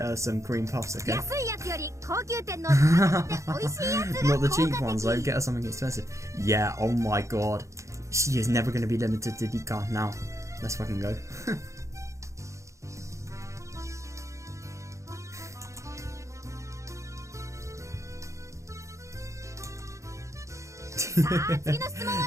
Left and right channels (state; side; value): late; left; 0.15 ms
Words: some cream puffs, okay? Not the cheap ones, though. Get her something expensive. Yeah, oh my god. She is never going to be limited to Dika now. Let's fucking go.